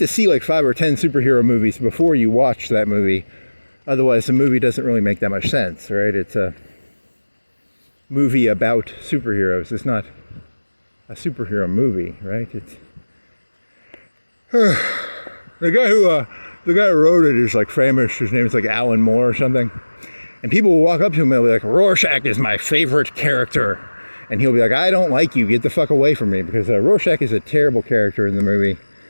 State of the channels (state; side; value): inverted; both; correlation -1.00